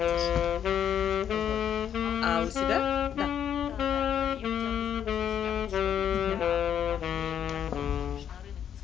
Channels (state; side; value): quieter; right; 9.1 dB